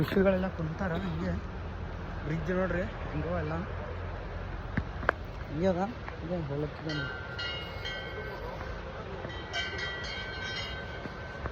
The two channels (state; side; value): identical; both; correlation 1.00